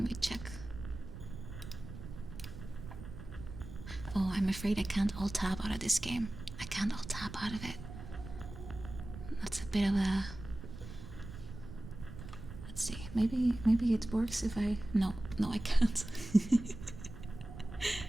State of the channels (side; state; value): right; noise; rumble, 12 dB below the sound